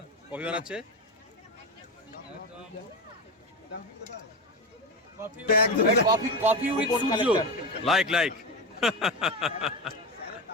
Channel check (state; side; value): normal; both; correlation 0.19